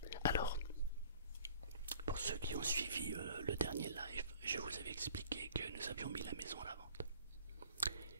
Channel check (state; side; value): inverted; both; correlation -0.50